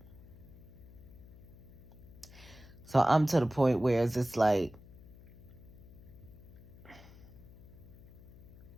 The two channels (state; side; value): noise; left; hum, 19 dB below the sound